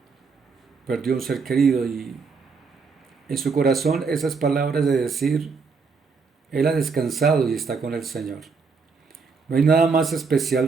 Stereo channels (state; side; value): quieter; left; 4.9 dB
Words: perdió un ser querido, y en su corazón esas palabras de decir: él ha descansado y está con el Señor. No hay nada más especial